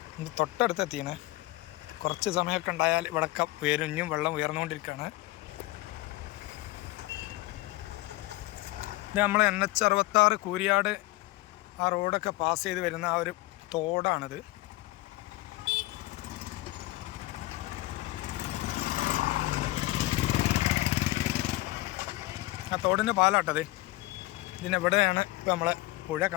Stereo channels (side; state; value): right; quieter; 19.3 dB